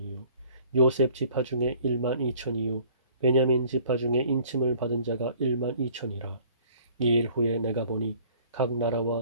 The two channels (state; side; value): inverted; both; correlation -0.55